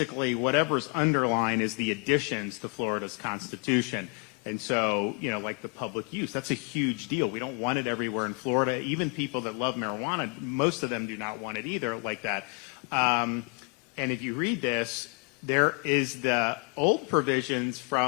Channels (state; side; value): quieter; right; 35.2 dB